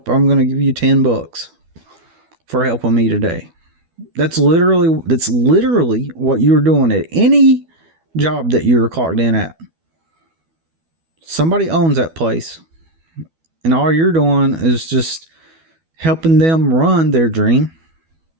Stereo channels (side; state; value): left; late; 12 ms